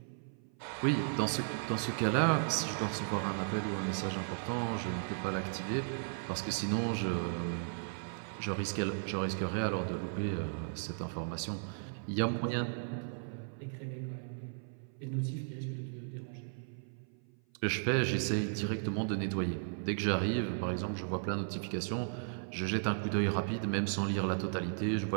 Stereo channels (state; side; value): silent; left; 54 dB below the other